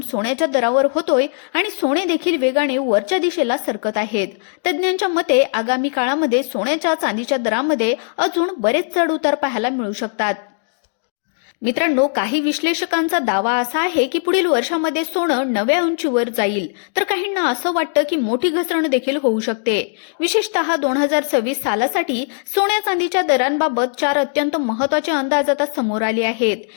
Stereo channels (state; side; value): silent; right; digital silence